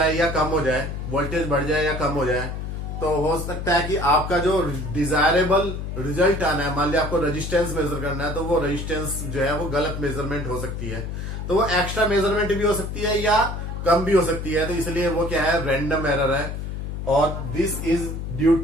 या कम हो जाए, वोल्टेज बढ़ जाए या कम हो जाए। तो हो सकता है कि आपका जो डिजायरेबल रिजल्ट आना है, मान लिया आपको रेजिस्टेंस मेजर करना है, तो वो रेजिस्टेंस जो है वो गलत मेजरमेंट हो सकती है। तो वो एक्स्ट्रा मेजरमेंट भी हो सकती है या कम भी हो सकती है। तो इसलिए वो क्या है, रैंडम एरर है। और this is due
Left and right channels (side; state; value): left; noise; hum, 5 dB below the sound